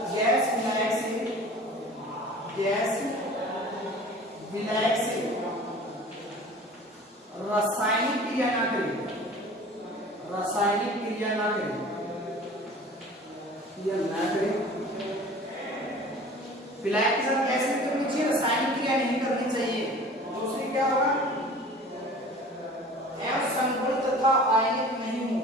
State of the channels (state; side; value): normal; both; correlation 0.43